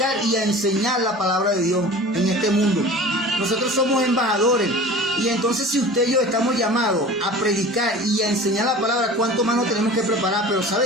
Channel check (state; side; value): normal; both; correlation 0.39